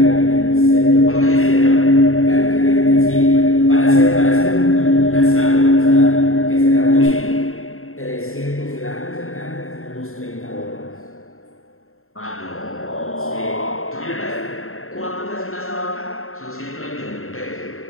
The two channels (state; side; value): late; right; 0.62 ms